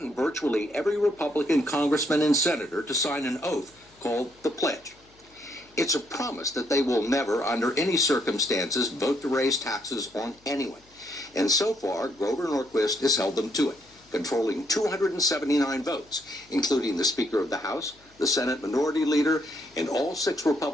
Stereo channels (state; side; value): noise; left; hum, 30 dB below the sound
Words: virtually every Republican congressman and senator to sign an oath called the Pledge. It's a promise that they will never, under any circumstances, vote to raise taxes on anyone. And so far, Grover Norquist has held them to it, controlling 279 votes, including the Speaker of the House, the Senate Minority Leader, and all 6